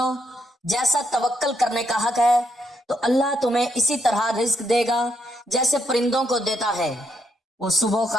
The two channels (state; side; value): normal; both; correlation 0.77